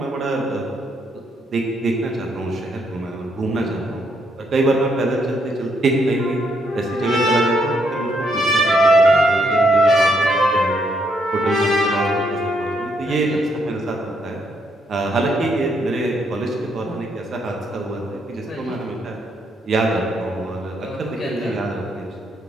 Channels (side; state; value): both; normal; correlation 0.74